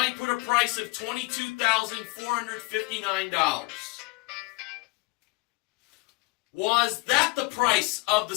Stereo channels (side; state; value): right; quieter; 24.9 dB